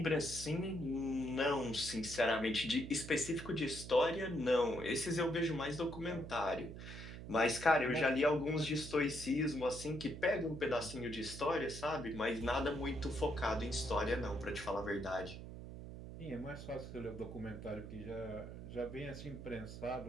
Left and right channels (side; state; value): right; noise; hum, 10 dB below the sound